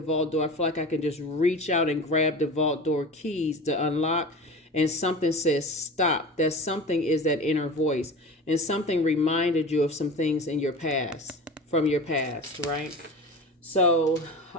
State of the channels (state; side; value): normal; both; correlation 0.33